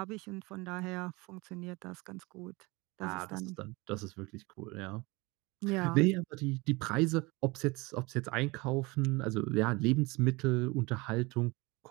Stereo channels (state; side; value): quieter; left; 24.6 dB